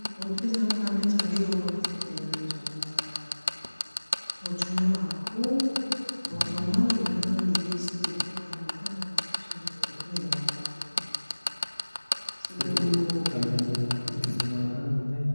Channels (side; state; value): both; inverted; correlation -1.00